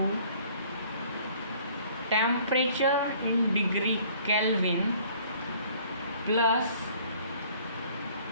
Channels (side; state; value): both; inverted; correlation -0.55